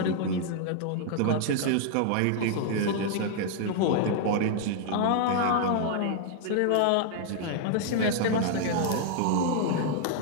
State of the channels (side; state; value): both; different; correlation 0.00